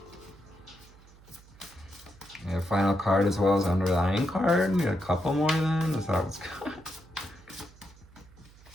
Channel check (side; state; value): right; noise; hum, 24 dB below the sound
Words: The final card as well as underlying card. Need a couple more then? Is that what's good?